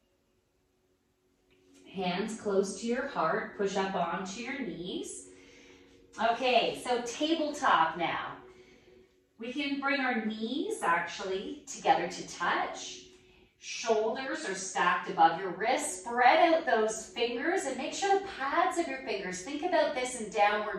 Hands close to your heart, push up onto your knees. Okay, so tabletop now. We can bring our knees actually together to touch. Shoulders are stacked above your wrists. Spread out those fingers and make sure the pads of your fingers, think about this in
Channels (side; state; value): both; identical; correlation 1.00